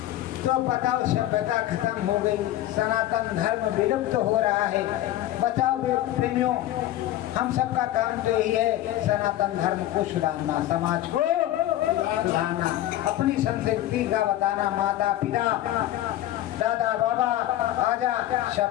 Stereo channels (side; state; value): right; quieter; 13.9 dB